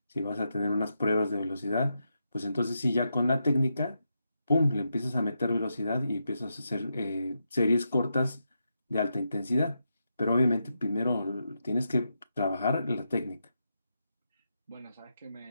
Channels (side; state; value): both; inverted; correlation -0.85